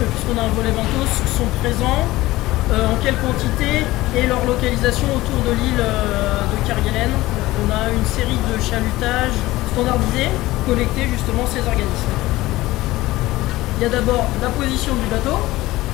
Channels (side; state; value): right; quieter; 18.0 dB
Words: puisqu'on a un volet benthos, sont présents, en quelle quantité et leur localisation autour de l'île de Kerguelen. On a une série de chalutages standardisés, collectés justement ces organismes. Il y a d'abord la position du bateau,